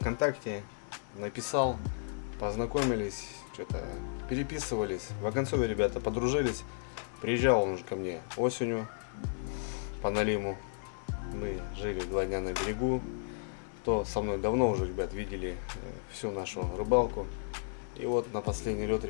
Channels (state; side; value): silent; right; 55 dB below the other